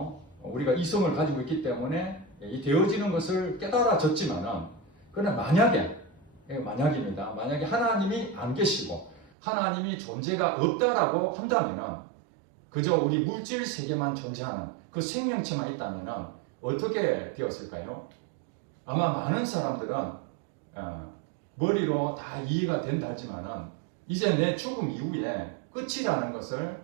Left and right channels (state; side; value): drops out; left; at 9.3 s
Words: 우리가 이성을 가지고 있기 때문에 이 되어지는 것을 깨달아졌지만은 그러나 만약입니다. 만약에 하나님이 안 계시고 하나님이 존재가 없다라고 한다면은 그저 우리 물질 세계만 존재하는 그 생명체만 있다면은 어떻게 되었을까요? 아마 많은 사람들은 머리로 다 이해가 된다 하지만은 이제 내 죽음 이후에 끝이라는 것을